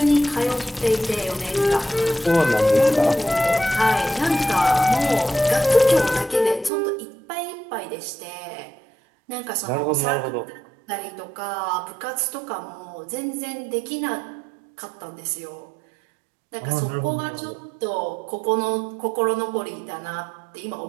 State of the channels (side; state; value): left; drops out; at 6.7 s